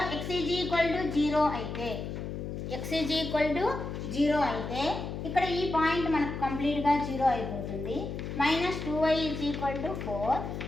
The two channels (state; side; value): noise; left; hum, 6 dB below the sound